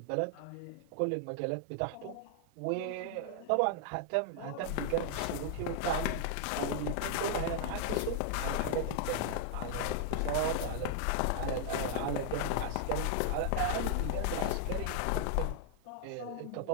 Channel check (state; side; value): different; both; correlation -0.01